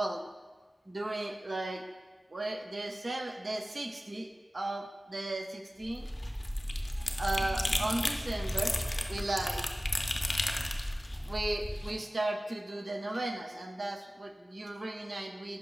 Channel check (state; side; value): normal; both; correlation 0.97